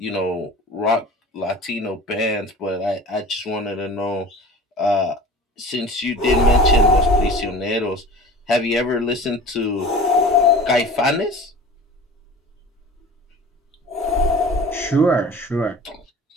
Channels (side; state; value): both; normal; correlation 0.40